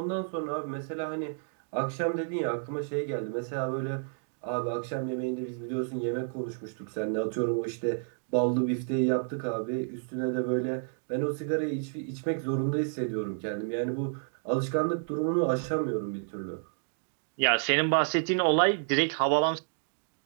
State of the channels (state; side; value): silent; left; digital silence